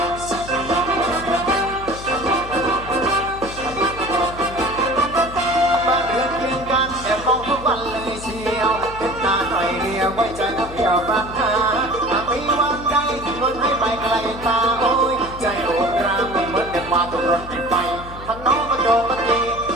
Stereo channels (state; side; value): noise; left; hum, 14 dB below the sound